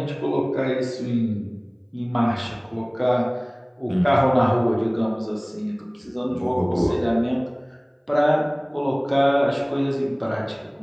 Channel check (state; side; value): identical; both; correlation 1.00